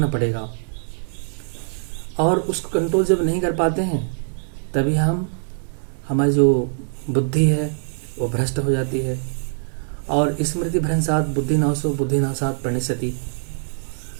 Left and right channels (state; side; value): silent; left; digital silence